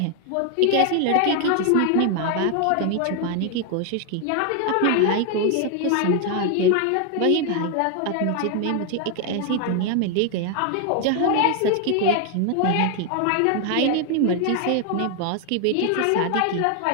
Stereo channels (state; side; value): different; both; correlation 0.00